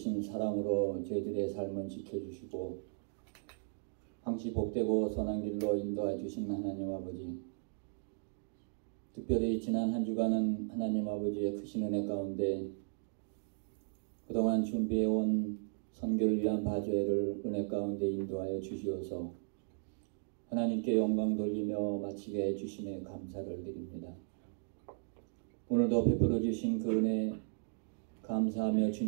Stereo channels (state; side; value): silent; left; digital silence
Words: 사랑으로 저희들의 삶을 지켜주시고 항시 복되고 선한 길로 인도해 주신 하나님 아버지, 특별히 지난 한 주간은 하나님 아버지의 크신 은혜 가운데 그동안 준비해온 선교를 위한 바제를 은혜 가운데 인도하여 주시어서 하나님께 영광 돌리며 마치게 해주심에 감사를 드립니다. 오늘도 베풀어 주신 그 은혜 감사하며